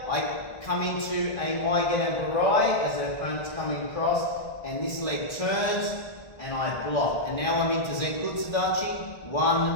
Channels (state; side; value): late; right; 1.5 ms